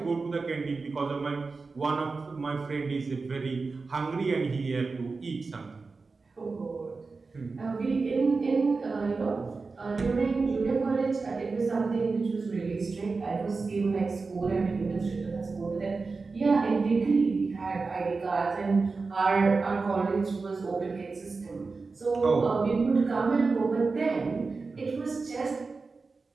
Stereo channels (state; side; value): quieter; left; 4.2 dB